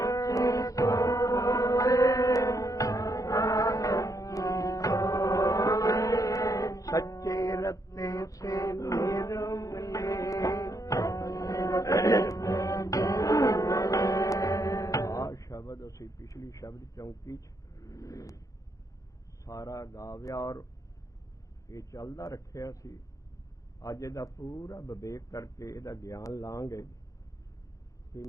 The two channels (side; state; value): right; late; 0.16 ms